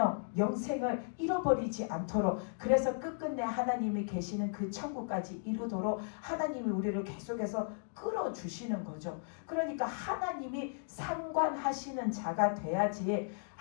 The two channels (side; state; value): right; silent; digital silence